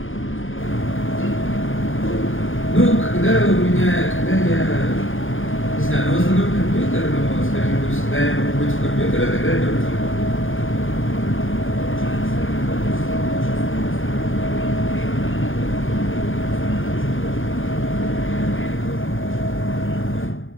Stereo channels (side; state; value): right; late; 0.59 ms